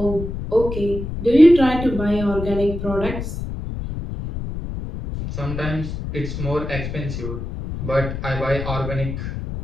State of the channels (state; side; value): noise; left; rumble, 6 dB below the sound